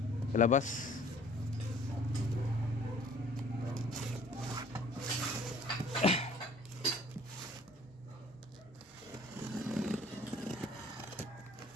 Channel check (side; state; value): both; normal; correlation 0.54